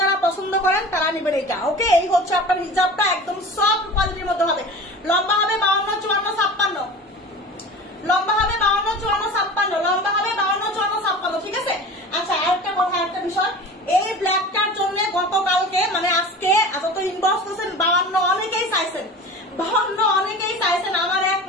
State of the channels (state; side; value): normal; both; correlation 0.36